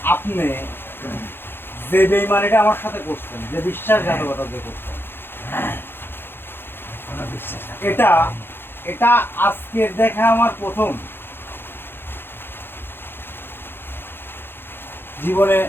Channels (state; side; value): late; right; 0.10 ms